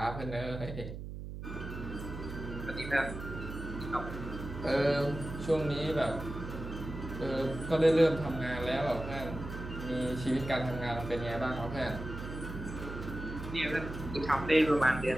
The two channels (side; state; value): right; noise; hum, 8 dB below the sound